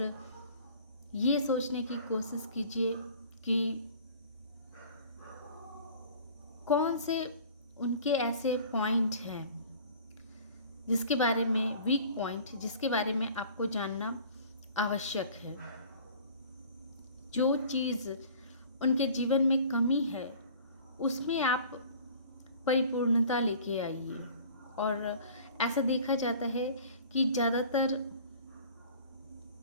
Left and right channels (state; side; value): inverted; both; correlation -0.47